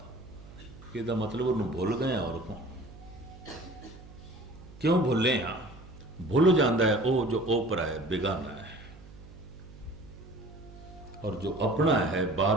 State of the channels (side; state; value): right; noise; hum, 18 dB below the sound